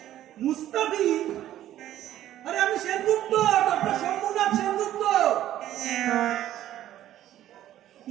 মুস্তাফি? আরে আমি সেনগুপ্ত, ডক্টর শম্ভুনাথ সেনগুপ্ত।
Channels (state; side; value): quieter; left; 12.7 dB